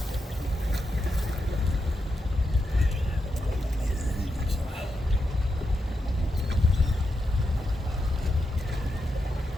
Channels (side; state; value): both; normal; correlation 0.86